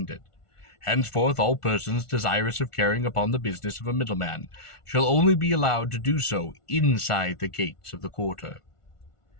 Henceforth, all persons desirous of carrying upon the business of a middleman shall only be allowed to do so inside the gates of the quarter.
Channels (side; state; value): right; late; 1.4 ms